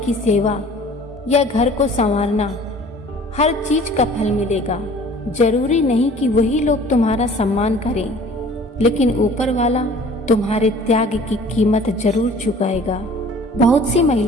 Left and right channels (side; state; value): both; normal; correlation 0.49